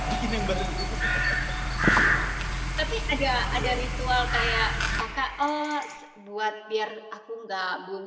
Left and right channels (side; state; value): both; identical; correlation 1.00